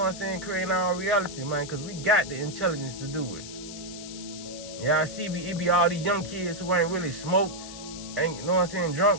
I'm saying, creating our reality, man, because we got the intelligence to do it. Yeah, I see it be all these young kids who ain't really smoked, ain't, you know what I'm saying,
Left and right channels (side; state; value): left; noise; hiss, 12 dB below the sound